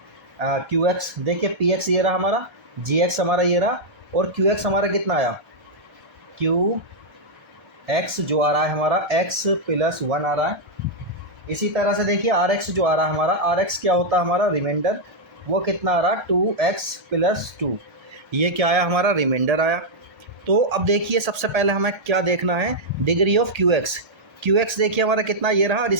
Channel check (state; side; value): late; left; 1.3 ms